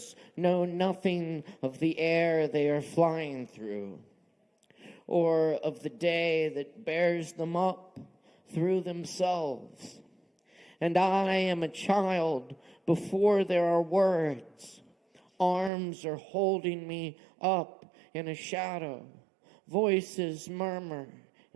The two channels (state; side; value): drops out; left; at 15.7 s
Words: know nothing of the air they are flying through, or of the day that bears them up through themselves. And I am a child before there are words. Arms are holding me up in a shadow. Voices murmur